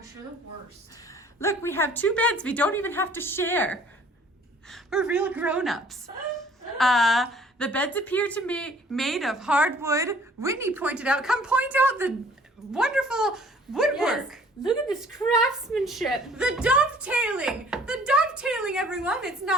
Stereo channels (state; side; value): normal; both; correlation 0.54